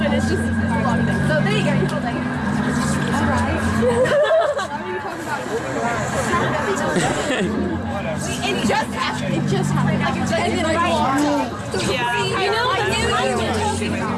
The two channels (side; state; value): both; identical; correlation 1.00